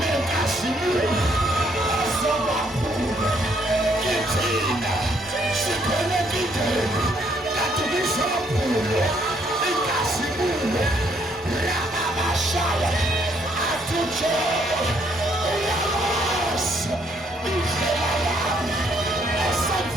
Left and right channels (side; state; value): both; normal; correlation 0.69